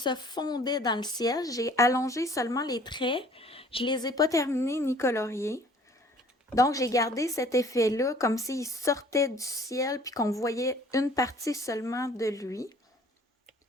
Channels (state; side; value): normal; both; correlation 0.53